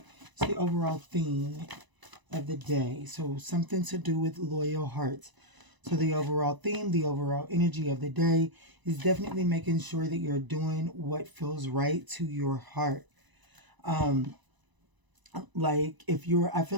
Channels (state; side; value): late; left; 1.0 ms